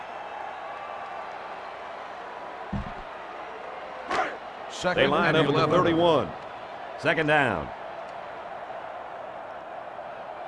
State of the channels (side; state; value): both; identical; correlation 1.00